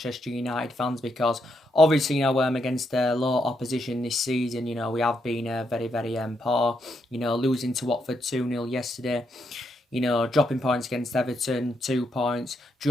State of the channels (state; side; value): normal; both; correlation 0.79